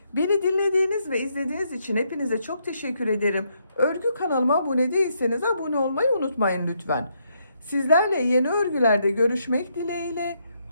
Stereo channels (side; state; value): both; inverted; correlation -0.76